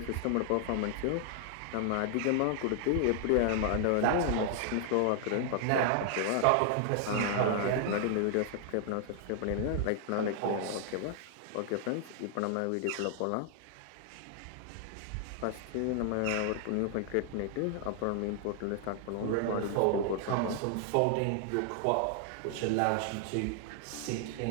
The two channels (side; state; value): both; different; correlation 0.00